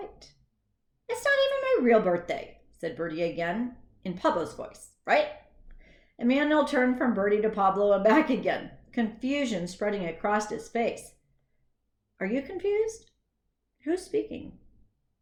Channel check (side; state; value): both; identical; correlation 1.00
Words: It's not even my real birthday, said Birdy again, in Pablo's voice, right? Emmanuel turned from Birdy to Pablo and back again, confusion spreading across his face. Are you confused? Who's speaking?